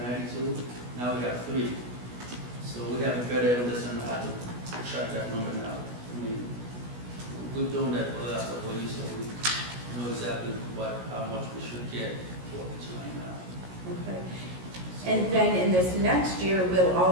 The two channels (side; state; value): left; late; 16 ms